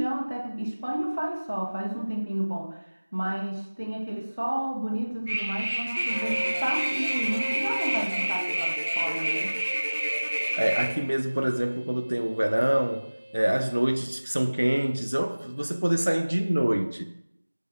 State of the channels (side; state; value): both; inverted; correlation -1.00